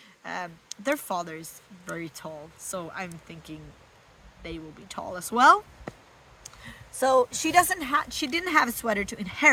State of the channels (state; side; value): identical; both; correlation 1.00